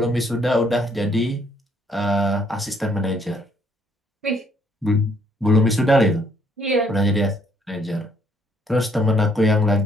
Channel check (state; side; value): normal; both; correlation 0.67